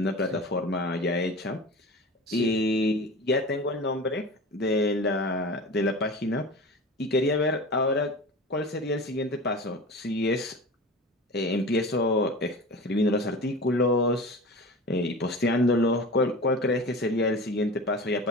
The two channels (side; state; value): both; normal; correlation 0.33